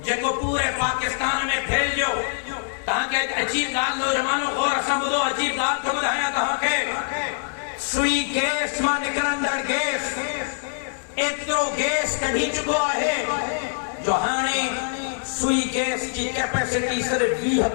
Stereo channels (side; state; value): right; silent; digital silence